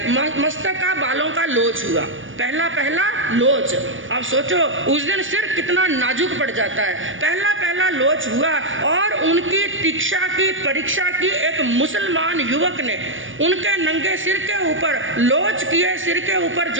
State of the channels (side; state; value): left; late; 0.57 ms